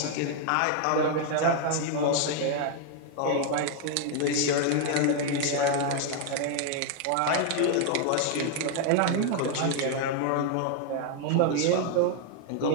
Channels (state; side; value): different; both; correlation 0.00